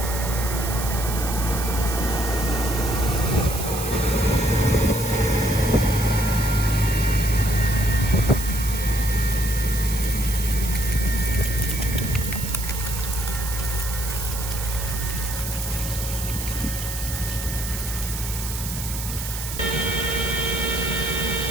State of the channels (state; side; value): noise; right; hiss, 7 dB below the sound